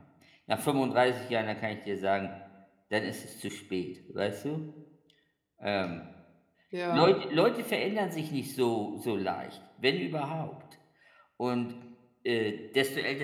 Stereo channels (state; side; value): identical; both; correlation 1.00